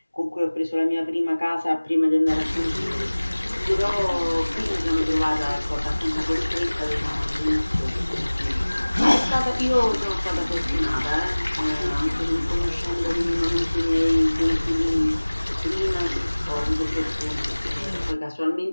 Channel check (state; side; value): inverted; both; correlation -1.00